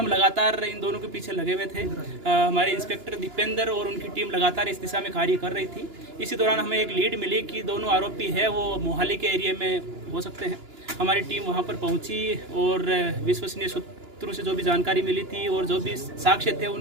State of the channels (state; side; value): late; left; 2.9 ms